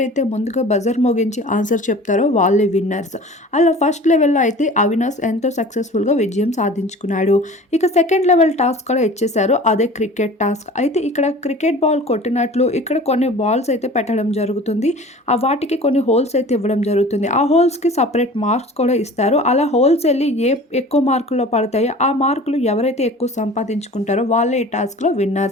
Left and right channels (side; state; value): both; normal; correlation 0.42